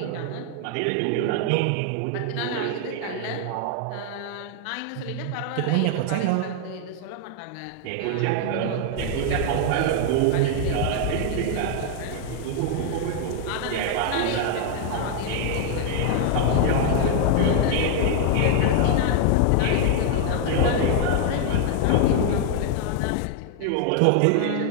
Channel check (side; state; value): both; different; correlation 0.00